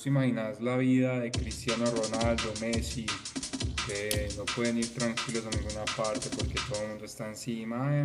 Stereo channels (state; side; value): identical; both; correlation 1.00